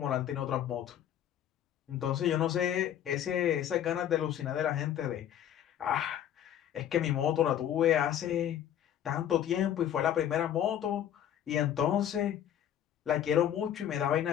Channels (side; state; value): right; quieter; 10.5 dB